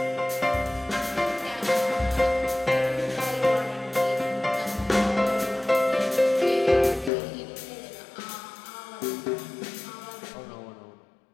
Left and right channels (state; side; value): drops out; right; at 7.1 s